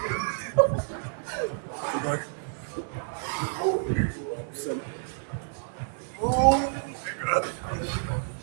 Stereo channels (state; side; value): silent; left; 59 dB below the other